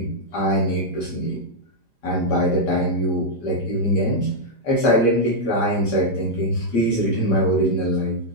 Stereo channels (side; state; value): right; late; 4.9 ms